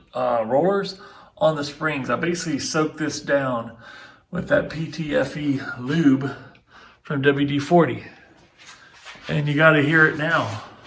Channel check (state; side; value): identical; both; correlation 1.00